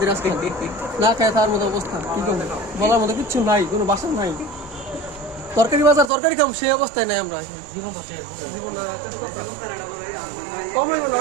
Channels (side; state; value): left; drops out; at 6.1 s